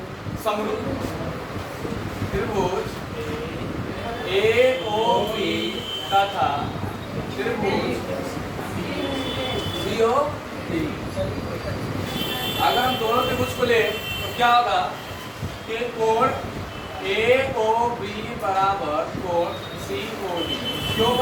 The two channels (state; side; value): identical; both; correlation 1.00